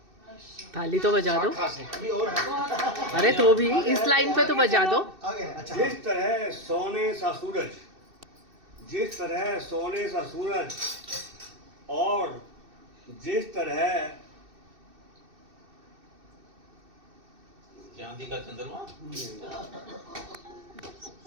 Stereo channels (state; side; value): late; left; 2.6 ms